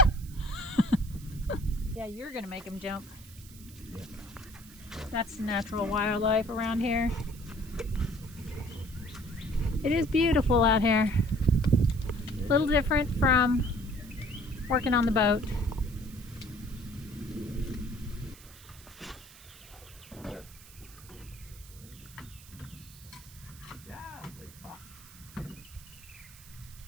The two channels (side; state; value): right; noise; hiss, 20 dB below the sound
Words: Yeah, you're gonna make him jump. Yeah. That's natural wildlife around here. It is beautiful out here. A little different from working on the boat.